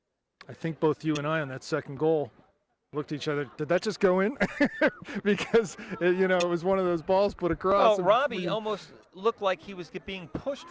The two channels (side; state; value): both; identical; correlation 1.00